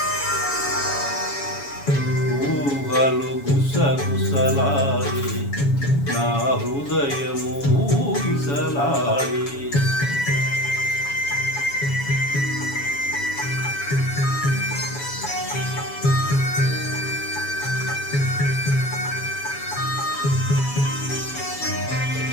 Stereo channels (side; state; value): right; late; 7.1 ms